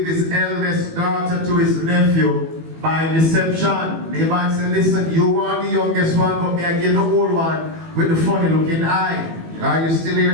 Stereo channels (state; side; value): late; left; 18 ms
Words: his eldest daughter to his nephew by deception. Laban said, listen, you want the youngest one, but me I get the old one with the funny looking eye. Are you still